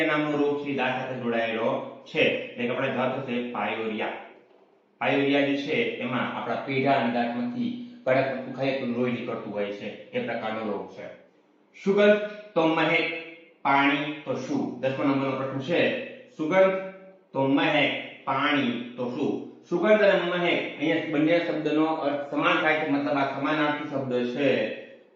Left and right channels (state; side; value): identical; both; correlation 1.00